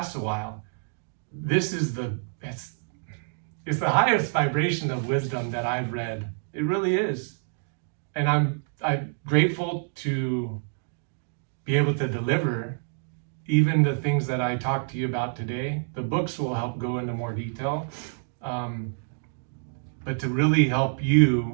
a while. This is it's the highest vibration of wisdom that I've read. It really is. And I'm grateful to be able to deliver even the things that I talked to you about today. The books will help go into more detail, but to really help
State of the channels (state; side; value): silent; left; digital silence